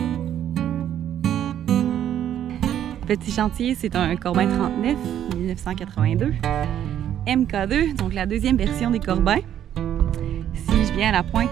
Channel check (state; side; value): quieter; left; 10.6 dB